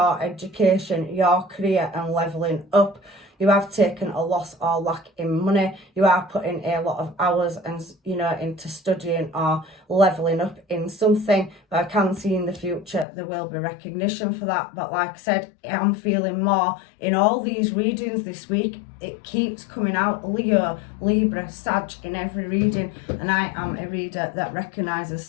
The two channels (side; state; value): right; drops out; at 13.1 s